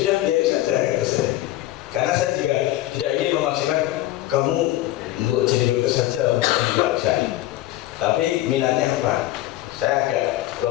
biar saja kata saya. Karena saya juga tidak ingin memaksakan kamu untuk jadi dokter saja, nggak usah. Tapi minatnya apa? Saya agak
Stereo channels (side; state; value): right; quieter; 15.3 dB